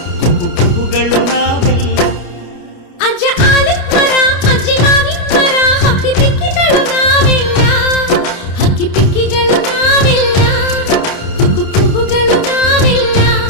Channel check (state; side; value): late; right; 29 ms